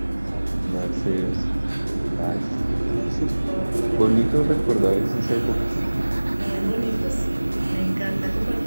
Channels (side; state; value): both; inverted; correlation -1.00